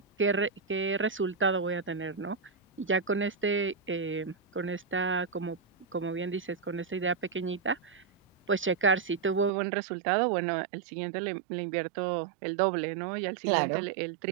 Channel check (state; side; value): drops out; left; at 9.5 s